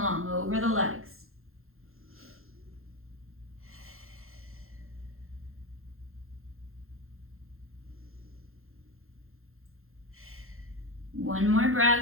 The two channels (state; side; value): late; left; 0.61 ms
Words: over the legs. One more